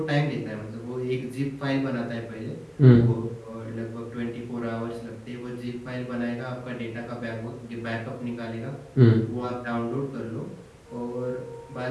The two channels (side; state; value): both; identical; correlation 1.00